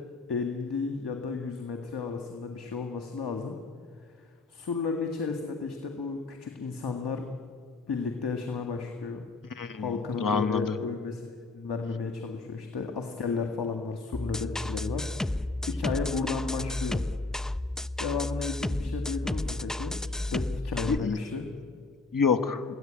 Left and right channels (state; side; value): quieter; right; 3.7 dB